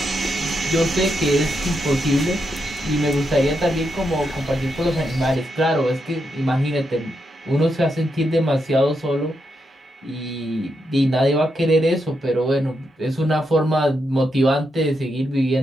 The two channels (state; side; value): normal; both; correlation 0.82